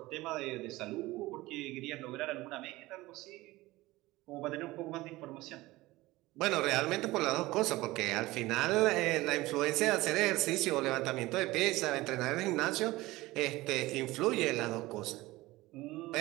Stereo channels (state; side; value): quieter; left; 19.2 dB